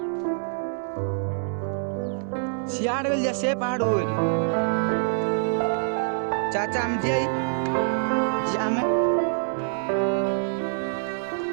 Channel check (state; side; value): silent; left; 61 dB below the other